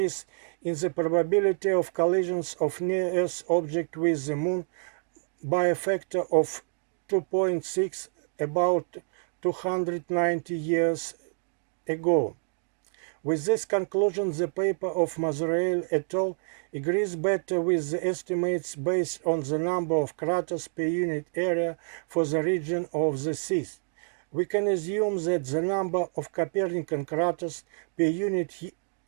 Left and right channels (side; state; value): left; silent; 59 dB below the other